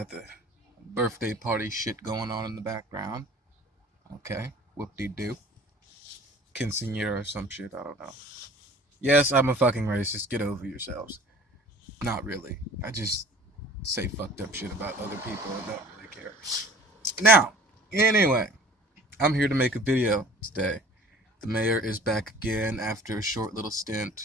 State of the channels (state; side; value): normal; both; correlation 0.48